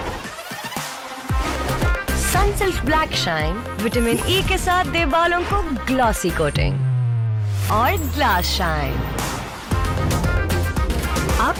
Sunsilk black shine vitamin E के साथ दे बालों को ग्लॉसी कोटिंग और ग्लास शाइन।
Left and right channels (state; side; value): identical; both; correlation 1.00